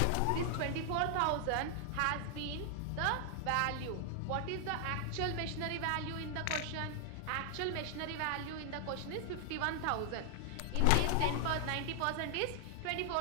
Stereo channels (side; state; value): both; different; correlation 0.00